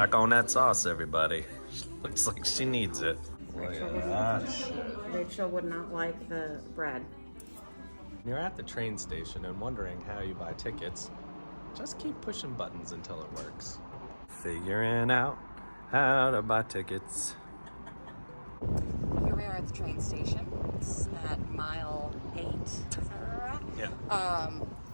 on that sauce, everybody. Looks like she needs it. Look at that. Rachel would not like the bread. You're at the train station and wondering how you buy tickets. Just keep pushing buttons until it works. Figuring out how to buy tickets. Here we are at the train station. It's at mile 8. Is that right? Yeah.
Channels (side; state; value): both; inverted; correlation -1.00